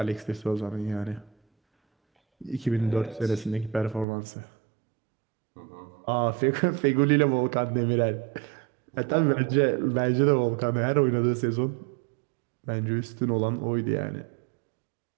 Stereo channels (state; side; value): drops out; left; at 4.0 s